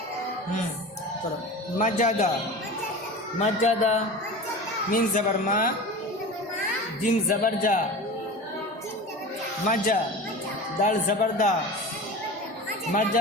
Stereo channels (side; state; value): both; normal; correlation 0.33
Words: مجدا مجدا من زبر ما جيم زبر جا مجا دال زبر دا